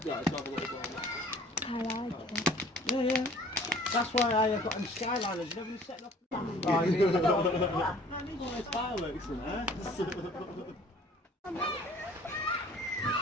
Yeah, it's not a little bit. I like it. Yeah, yeah. That's why I have got them Skyliners. You never set up. Oh, you need to go. I need one of those fireworks in there.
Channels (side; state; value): both; normal; correlation 0.52